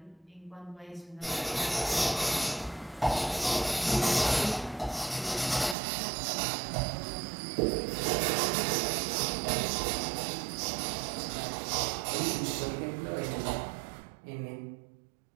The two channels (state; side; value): drops out; left; at 5.8 s